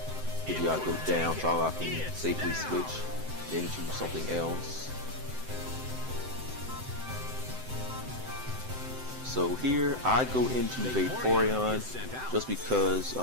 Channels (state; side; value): late; left; 7.8 ms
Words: Pidgeot go down so I can safely switch into something else. So here I go into Vaporeon just because